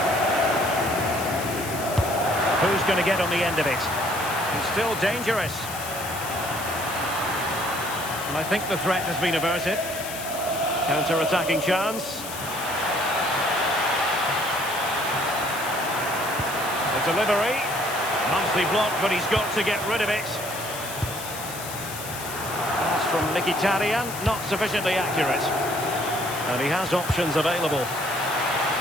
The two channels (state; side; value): noise; left; hiss, 10 dB below the sound